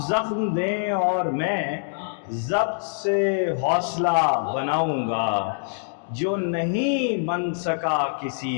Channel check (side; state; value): right; silent; digital silence